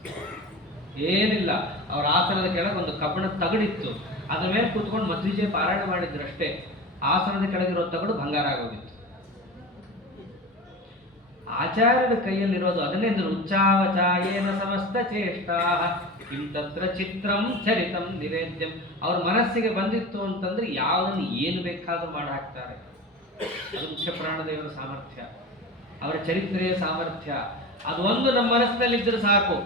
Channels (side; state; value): both; normal; correlation 0.31